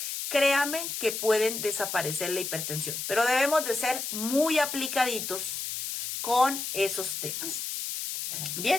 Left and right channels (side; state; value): left; noise; hiss, 4 dB below the sound